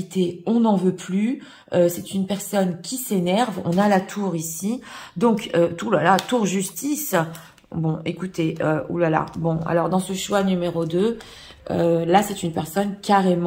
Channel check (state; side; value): identical; both; correlation 1.00